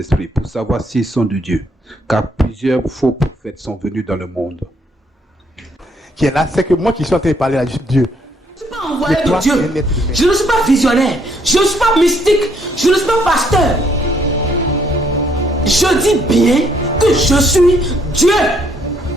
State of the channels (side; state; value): both; normal; correlation 0.69